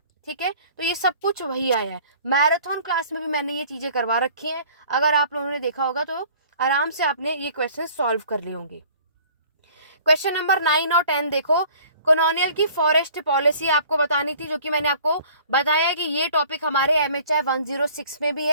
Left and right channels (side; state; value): both; inverted; correlation -0.51